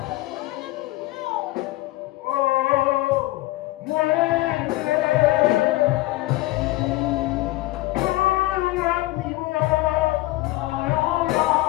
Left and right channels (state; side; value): quieter; right; 18.6 dB